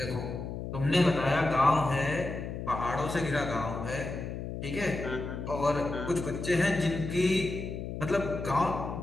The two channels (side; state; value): left; noise; hum, 6 dB below the sound